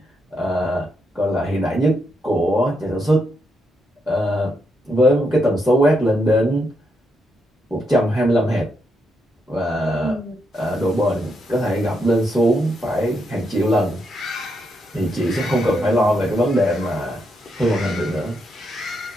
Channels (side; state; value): both; normal; correlation 0.80